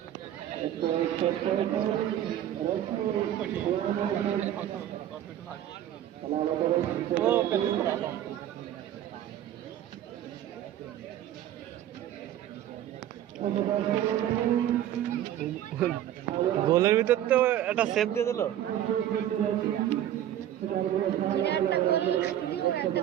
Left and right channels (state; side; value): quieter; left; 11.7 dB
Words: গোলের ভিতর তো একটা সেভ দিয়ে দিল। একটা গোল খাতি দিল, একটা